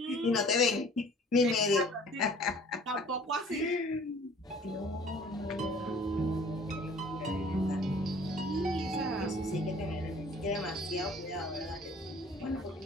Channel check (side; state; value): both; normal; correlation 0.51